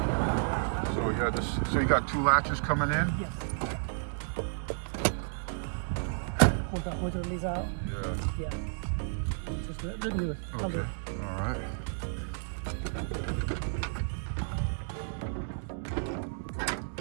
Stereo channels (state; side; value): silent; left; digital silence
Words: So yeah, the this? So you got two latches coming in? Yes. Pull the motor release out. Yeah. Yeah. Just do it. Okay. All right.